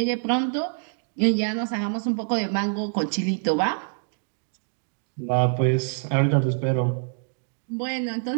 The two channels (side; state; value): left; silent; digital silence